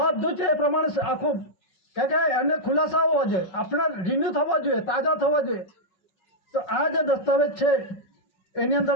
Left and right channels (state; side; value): late; right; 5.4 ms